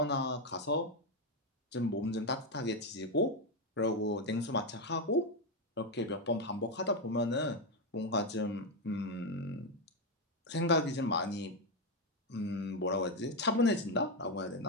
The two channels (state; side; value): normal; both; correlation 0.06